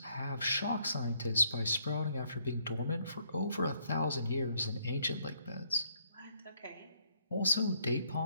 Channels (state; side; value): inverted; both; correlation -0.68